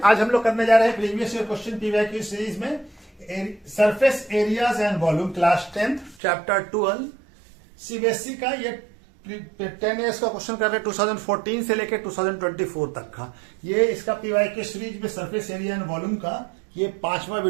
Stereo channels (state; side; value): drops out; left; at 6.2 s